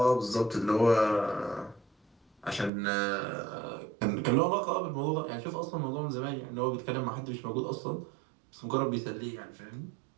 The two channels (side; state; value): left; drops out; at 2.7 s